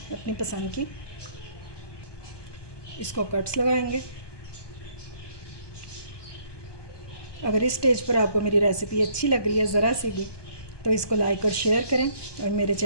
अपनी पसंद की। इसको कट्स लगाएंगे। अगर इस स्टेज पर आपको मेरी रेसिपी अच्छी लग रही है ज़रा सी भी, तो इसको लाइक और शेयर करें और मेरे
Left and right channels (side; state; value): right; late; 1.2 ms